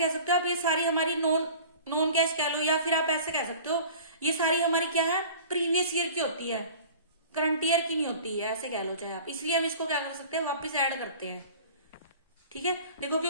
आप, ये सारी हमारी नॉन कैश कह लो, या फिर आप ऐसे कह सकते हो ये सारी हमारी क्या है, प्रीवियस ईयर की होती है, करंट ईयर की नहीं होती है, ऐसे कह लो चाहे आप। इसलिए हम इसको क्या कर सकते हैं, वापस ऐड करते हैं। ठीक है, देखो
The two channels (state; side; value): inverted; both; correlation -0.43